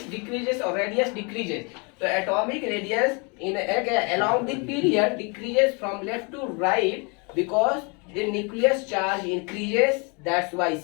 or radius decreases। तो atomic radius in along the period decreases from left to right because the nucleus charge increases। that's why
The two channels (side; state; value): right; quieter; 32.2 dB